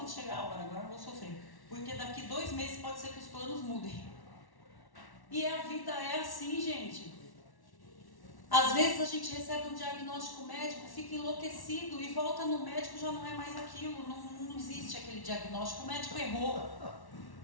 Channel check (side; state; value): right; late; 1.1 ms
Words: chegar a hora, agora eu vou sofrer. Porque daqui 2 meses pode ser que os planos mudem. E a vida é assim, gente. Às vezes a gente recebe um diagnóstico médico, fica enlouquecido e volta no médico, já não é mais aquilo, não existe aquele diagnóstico, o médico errou.